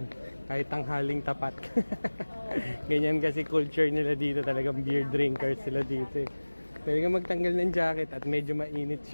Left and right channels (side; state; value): both; inverted; correlation -1.00